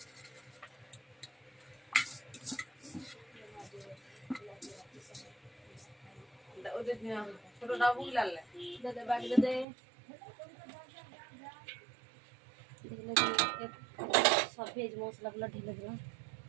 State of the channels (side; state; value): left; drops out; at 9.7 s